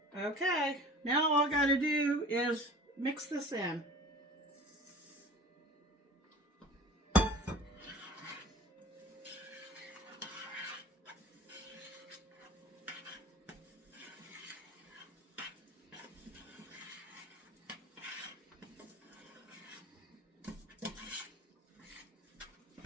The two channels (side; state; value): both; normal; correlation 0.42